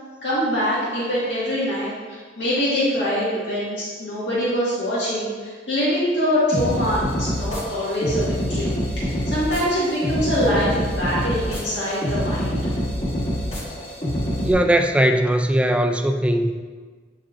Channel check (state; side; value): normal; both; correlation 0.54